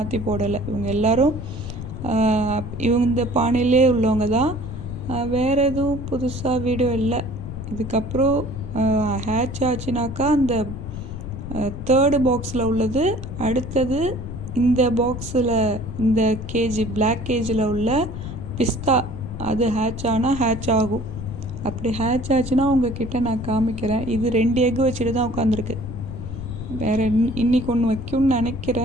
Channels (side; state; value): left; noise; rumble, 8 dB below the sound